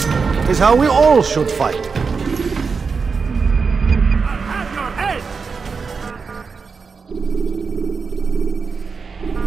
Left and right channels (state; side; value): quieter; left; 5.1 dB